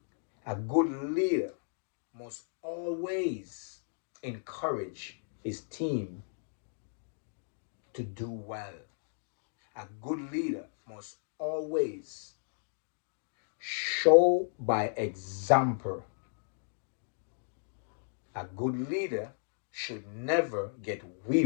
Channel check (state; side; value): silent; right; digital silence